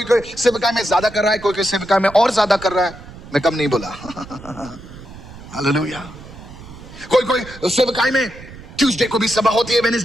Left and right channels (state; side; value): noise; right; rumble, 16 dB below the sound